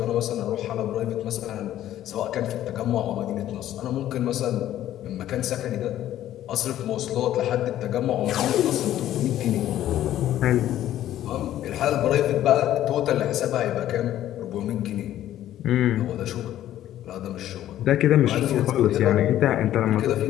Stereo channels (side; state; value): right; quieter; 12.6 dB